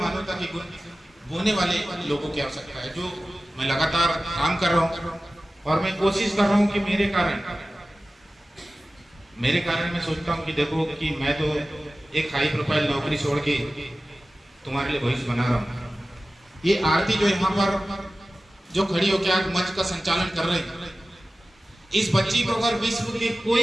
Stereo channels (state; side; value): normal; both; correlation 0.96